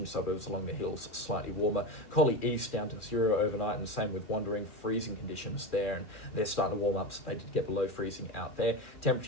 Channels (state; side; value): late; right; 2.4 ms